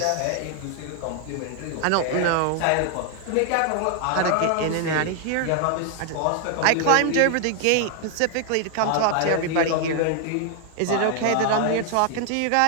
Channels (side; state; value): both; different; correlation 0.00